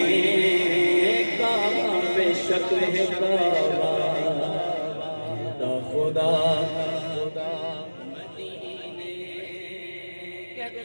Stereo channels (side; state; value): both; inverted; correlation -1.00